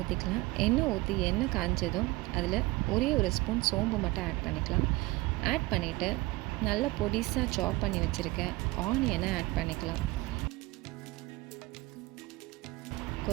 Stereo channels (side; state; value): left; quieter; 21.1 dB